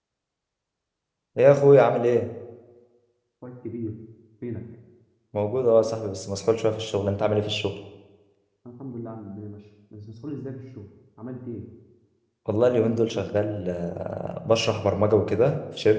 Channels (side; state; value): both; identical; correlation 1.00